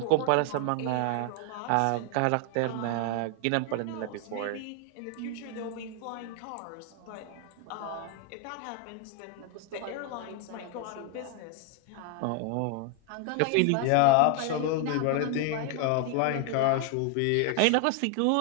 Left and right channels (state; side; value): different; both; correlation 0.00